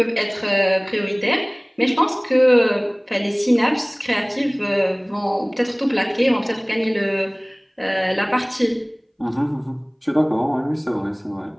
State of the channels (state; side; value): identical; both; correlation 1.00